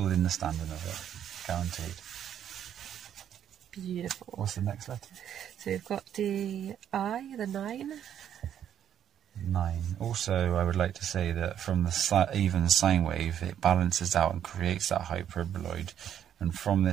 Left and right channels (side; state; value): left; quieter; 9.8 dB